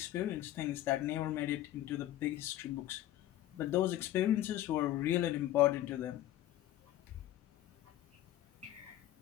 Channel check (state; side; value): quieter; right; 13.8 dB